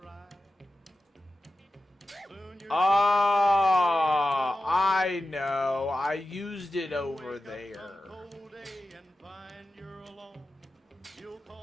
Soon you're I know. I used it over there. cold day and find you're alone. You'll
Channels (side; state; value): both; normal; correlation 0.92